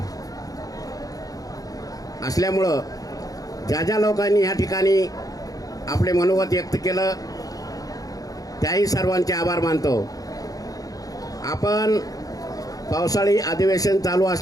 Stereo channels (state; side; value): late; right; 0.17 ms